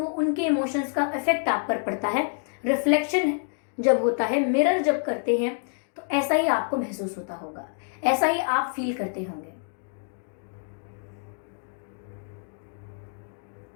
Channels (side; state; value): right; silent; 60 dB below the other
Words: उनके इमोशंस का इफेक्ट आप पर पड़ता है। रिफ्लेक्शन जब होता है, मिरर जब करते हैं तो ऐसा ही आपको महसूस होता होगा, ऐसा ही आप फील करते होंगे।